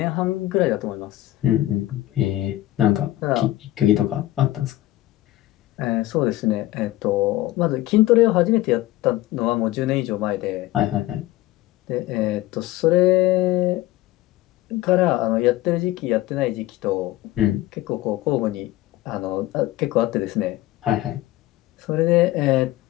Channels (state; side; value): quieter; right; 16.2 dB